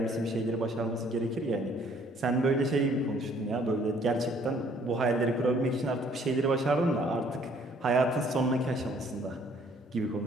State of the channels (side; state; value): both; normal; correlation 0.61